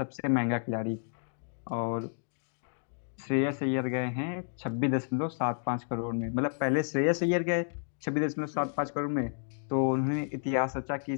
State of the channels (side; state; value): right; silent; digital silence